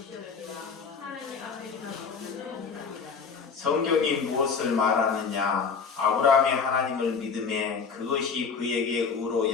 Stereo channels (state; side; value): quieter; right; 5.6 dB